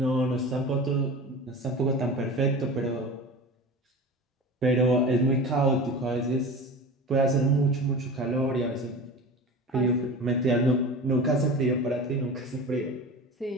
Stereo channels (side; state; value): both; normal; correlation 0.33